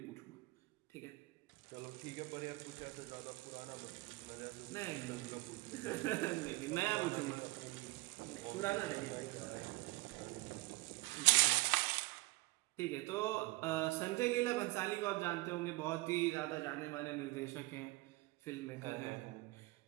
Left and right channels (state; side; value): quieter; left; 22.4 dB